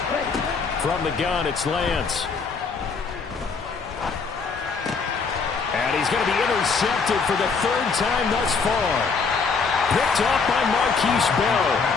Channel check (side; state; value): right; quieter; 5.0 dB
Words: From the gun, it's Lance. And he's going to be intercepted for the 3rd time thus far. Picked off by Marquise Bell.